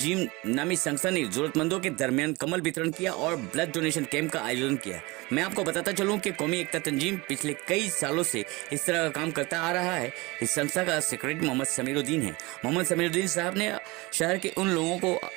नामी संस्था ने जरूरतमंदों के दरमियान कमल वितरण किया और ब्लड डोनेशन कैंप का आयोजन किया। मैं आपको बताता चलूं कि कौमी एकता तंजीम पिछले कई सालों से इस तरह का काम करता आ रहा है। इस संस्था का सेक्रेटरी मोहम्मद समीरुद्दीन है। मोहम्मद समीरुद्दीन साहब ने शहर के उन लोगों को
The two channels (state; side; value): quieter; left; 23.7 dB